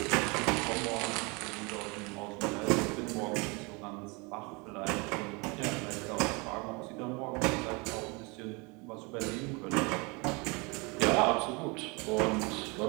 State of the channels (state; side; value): quieter; left; 28.6 dB